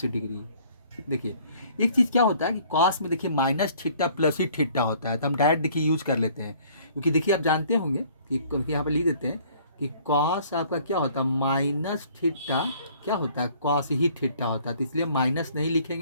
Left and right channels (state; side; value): inverted; both; correlation -0.57